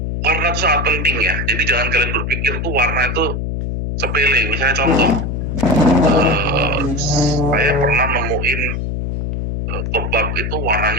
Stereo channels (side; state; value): left; noise; hum, 2 dB below the sound